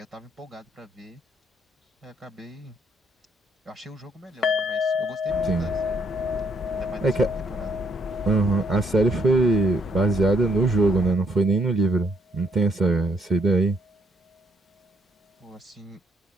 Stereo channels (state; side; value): normal; both; correlation 0.69